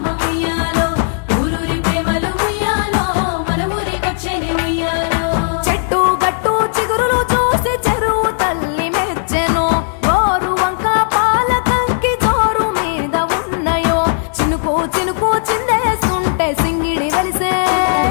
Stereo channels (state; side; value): silent; right; 69 dB below the other